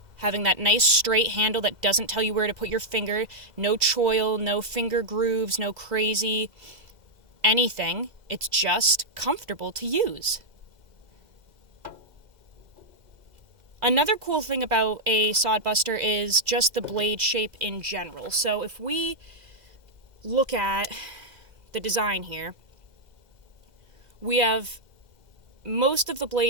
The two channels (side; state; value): left; late; 2.0 ms